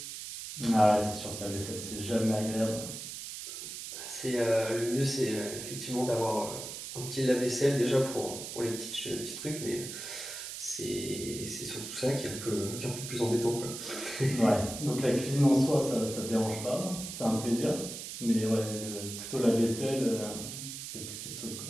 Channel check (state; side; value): noise; right; hiss, 8 dB below the sound